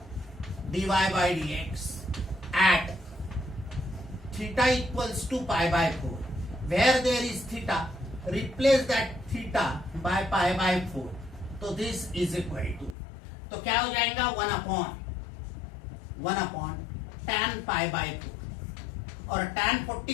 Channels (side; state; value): right; drops out; at 13.0 s